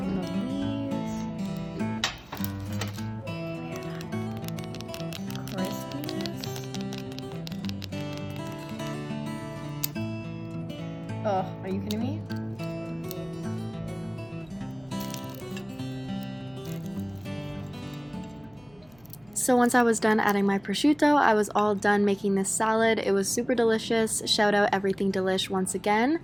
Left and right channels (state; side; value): noise; right; hum, 28 dB below the sound